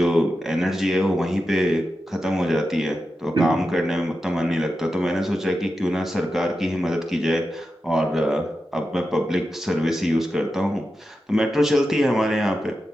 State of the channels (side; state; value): both; normal; correlation 0.90